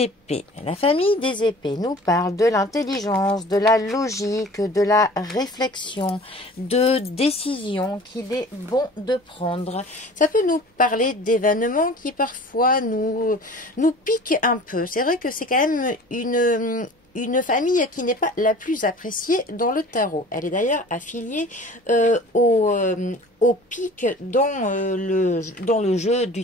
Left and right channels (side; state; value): both; normal; correlation 0.44